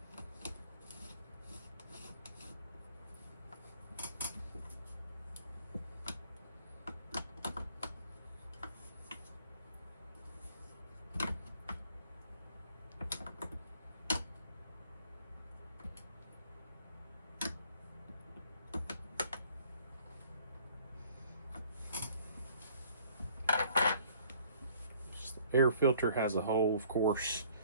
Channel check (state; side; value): inverted; both; correlation -0.57